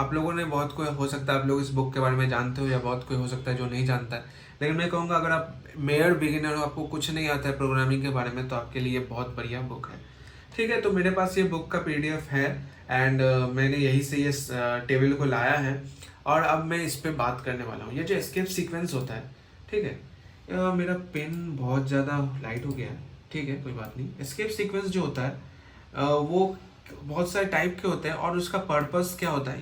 लोगों ने, बहुत कोई हो सकता है आप लोग इस बुक के बारे में जानते हो, या बहुत कोई हो सकता है जो नहीं जानता है, लेकिन मैं कहूँगा अगर आप मेयर बिगिनर हो, आपको कुछ नहीं आता है प्रोग्रामिंग के बारे में, तो आपके लिए बहुत बढ़िया बुक है, ठीक है। तो मेरे पास ये बुक का PDF है, एंड मैंने यहीं से ये टेबल को लाया है, और अब मैं इस पे बात करने वाला हूँ। ये जो एस्केप सीक्वेंस होता है, ठीक है, मेरा पेन बहुत ज़्यादा लाइट हो गया है, ठीक है, कोई बात नहीं। एस्केप सीक्वेंस जो होता है वो बहुत सारे टाइप के होते हैं, और उसका पर्पस क्या होता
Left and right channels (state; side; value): identical; both; correlation 1.00